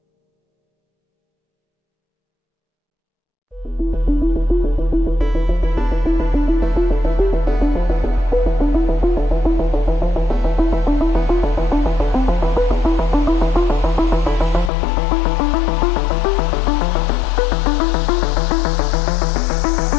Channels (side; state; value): right; drops out; at 14.7 s